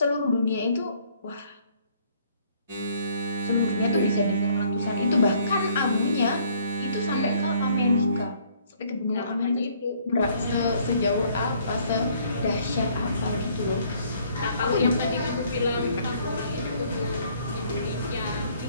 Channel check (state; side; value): inverted; both; correlation -0.62